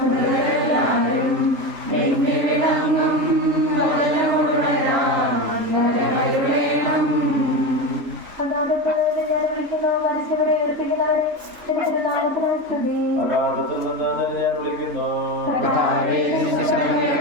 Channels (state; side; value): late; left; 3.4 ms